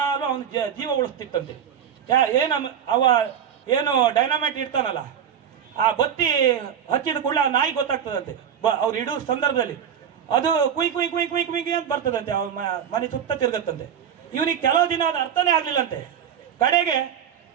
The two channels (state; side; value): quieter; left; 8.6 dB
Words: ಅವನ ಜೀವ ಉಳಿಸ್ತಿತ್ತಂತೆ. ಅವ ಏನು ಡೈನಾಮೈಟ್ ಇಡ್ತಾನಲ್ಲ, ಆ ಬತ್ತಿ ಹಚ್ಚಿದ ಕೂಡಲೇ ಆ ನಾಯಿ ಗೊತ್ತಾಗ್ತದಂತೆ ಅವ್ರು ಇಡೋ ಸಂದರ್ಭದಲ್ಲಿ. ಅದು ಕುಯ್ ಕುಯ್ ಕುಯ್ ಕುಯ್ ಕುಯ್ ಅಂತ ಬರ್ತದಂತೆ, ಅವ್ರ ಮನೆ ಸುತ್ತ ತಿರುಗತ್ತಂತೆ. ಇವನಿಗೆ ಕೆಲವು ದಿನ ಅದು ಅರ್ಥನೇ ಆಗಲಿಲ್ಲಂತೆ. ಕಡೆಗೆ